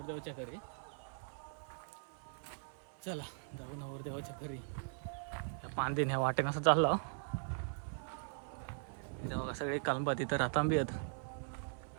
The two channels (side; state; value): left; silent; 51 dB below the other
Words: घरी. चला जाऊ नवरदेवाच्या घरी. त्या पांदेन ह्या वाटेनं असं चाललं. तिथं बघा सगळे कलंबा तिथं रातांबी आहेत.